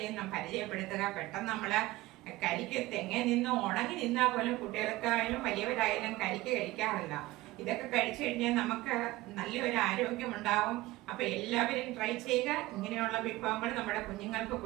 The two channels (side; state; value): left; quieter; 18.6 dB